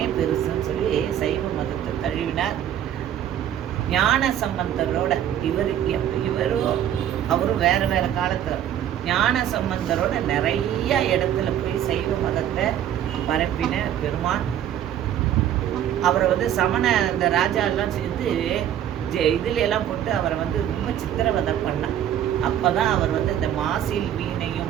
பெருசுன்னு சொல்லி சைவ மதத்தை தழுவினார். ஞான சம்பந்தரோட இவரும் அவரும் வேற வேற காலத்துல ஞான சம்பந்தரோட நிறைய இடத்துல போய் சைவ மதத்தை பரப்பின பெருமான். அவரை சமண இந்த ராஜா எல்லாம் சேர்ந்து இதுல எல்லாம் போட்டு அவரை ரொம்ப சித்திரவதை பண்ணான். அப்பதான் அவர் இந்த மாசில்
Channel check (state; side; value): quieter; left; 10.6 dB